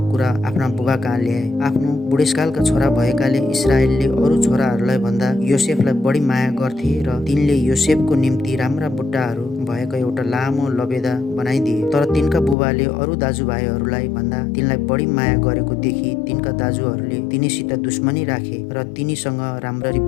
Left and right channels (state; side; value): drops out; right; at 12.6 s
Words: कुरा आफ्ना बुबा कहाँ ल्याए। आफ्नो बुढेसकालका छोरा भएकाले इस्राएलले अरू छोराहरूलाई भन्दा योसेफलाई बढी माया गर्थे र तिनले योसेफको निम्ति राम्रा बुट्टाहरू भएको एउटा लामो लबेदा बनाइदिए। तर तिनका बुबाले अरू दाजुभाइहरूलाई भन्दा तिनलाई बढी माया गरेको देखि तिनका दाजुहरूले तिनीसित दुश्मनी राखे र तिनीसँग राम्ररी